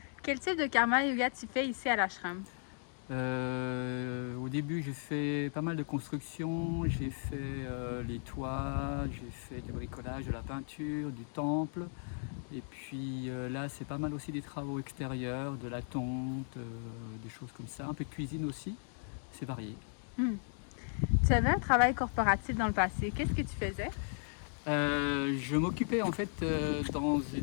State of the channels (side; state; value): right; silent; 54 dB below the other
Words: Quel type de karma yoga tu fais ici à l'ashram? Au début, j'ai fait pas mal de construction. J'ai fait les toits, j'ai fait du bricolage, de la peinture, du temple. Et puis là, c'est pas mal aussi des travaux extérieurs, de la tonte, des choses comme ça. Un peu de cuisine aussi. C'est varié. Tu avais un travail corporatif dans le passé. Qu'est-ce que tu faisais? Je m'occupais en fait dans